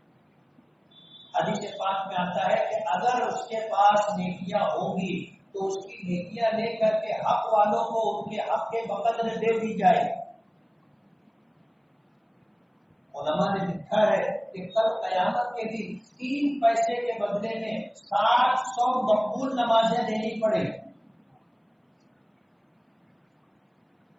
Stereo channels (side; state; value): both; identical; correlation 1.00